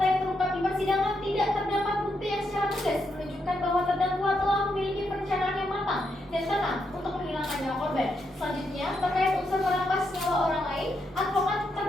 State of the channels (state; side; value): normal; both; correlation 0.80